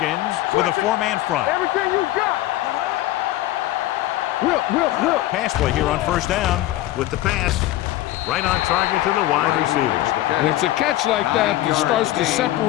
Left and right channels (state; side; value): quieter; right; 15.5 dB